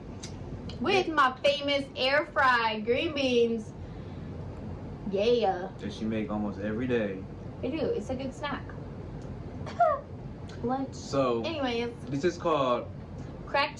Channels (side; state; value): both; identical; correlation 1.00